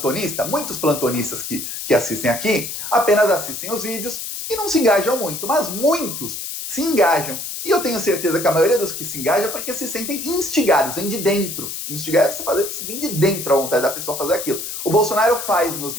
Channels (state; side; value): noise; left; hiss, 6 dB below the sound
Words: muitos plantonistas que assistem aqui, apenas assistem os vídeos e não se engajam muito, mas muitos se engajam. E eu tenho certeza que a maioria dos que se engajam é porque se sentem instigados, vem de dentro. Instigar é você vem de dentro a vontade da pessoa fazer aquilo. O Bolsonaro faz nos